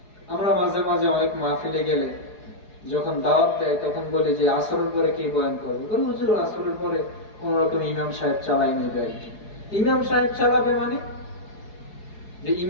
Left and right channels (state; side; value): late; right; 4.8 ms